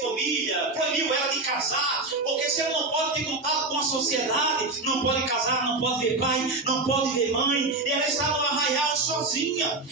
proibiu ela de casar, porque se ela não pode ter contato com a sociedade, não pode casar, não pode ver pai, não pode ver mãe, e ela está no arraial sozinha,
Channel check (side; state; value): left; quieter; 3.3 dB